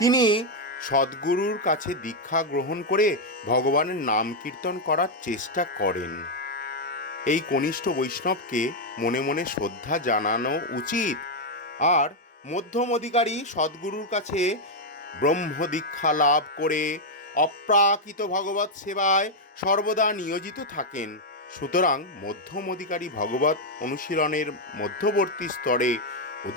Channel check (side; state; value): both; normal; correlation 0.00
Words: তিনি সদ্গুরুর কাছে দীক্ষা গ্রহণ করে ভগবানের নাম কীর্তন করার চেষ্টা করেন। এই কনিষ্ঠ বৈষ্ণবকে মনে মনে শ্রদ্ধা জানানো উচিত। আর মধ্যম অধিকারী সদ্গুরুর কাছে ব্রহ্ম দীক্ষা লাভ করে অপ্রাকৃত ভগবত সেবায় সর্বদা নিয়োজিত থাকেন। সুতরাং মধ্যম অধিকারী ভগবত অনুশীলনের মধ্যবর্তী স্তরে